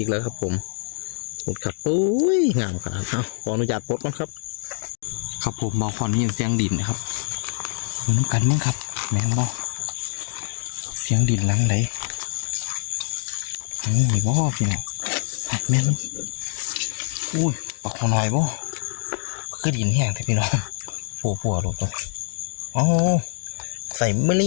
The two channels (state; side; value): silent; right; digital silence